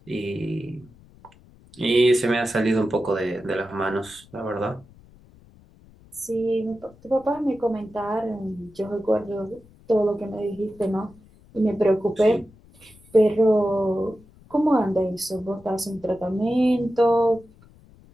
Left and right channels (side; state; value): left; noise; rumble, 26 dB below the sound